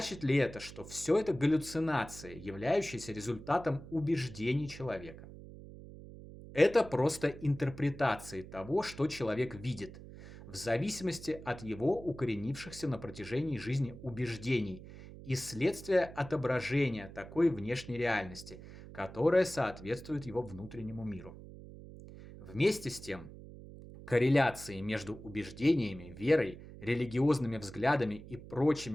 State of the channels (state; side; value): noise; right; hum, 15 dB below the sound